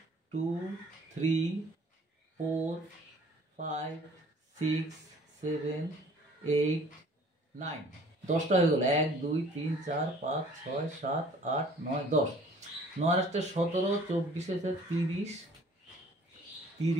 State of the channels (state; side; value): normal; both; correlation 0.53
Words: 2, 3, 4, 5, 6, 7, 8, 9। 10টা হয়ে গেল। 1, 2, 3, 4, 5, 6, 7, 8, 9, 10। 9 আসতে 17, 24 আছে 30,